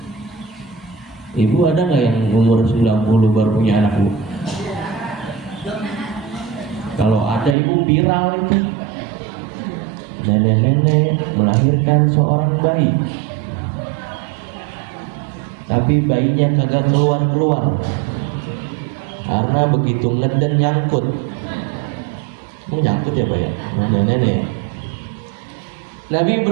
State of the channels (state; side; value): drops out; left; at 7.6 s